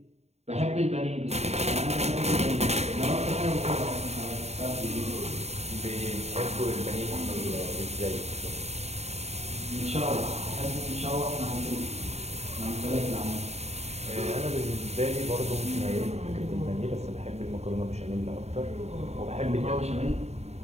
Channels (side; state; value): left; late; 0.31 ms